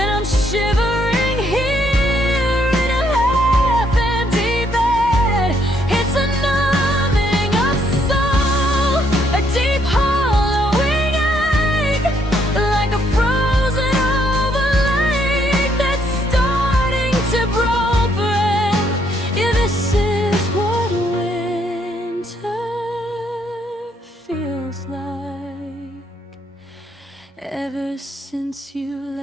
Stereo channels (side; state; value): both; normal; correlation 0.71